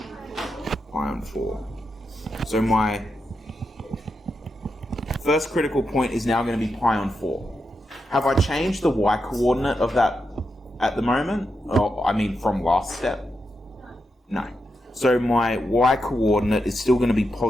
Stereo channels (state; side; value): normal; both; correlation 0.86